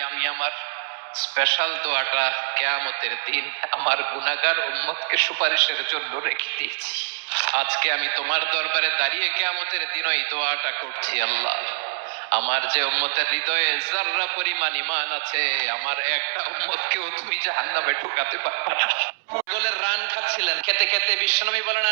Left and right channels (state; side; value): silent; left; 62 dB below the other